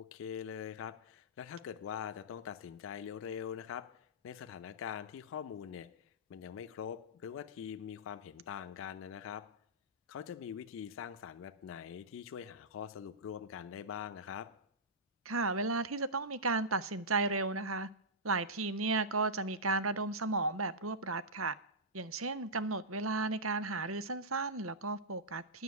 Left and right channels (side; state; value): both; normal; correlation -0.14